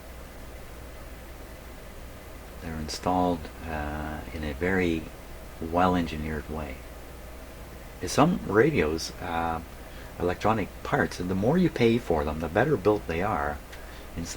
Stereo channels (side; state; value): both; identical; correlation 1.00